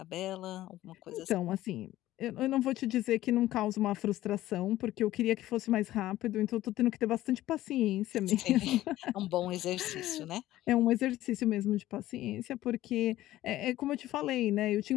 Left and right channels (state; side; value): quieter; right; 15.0 dB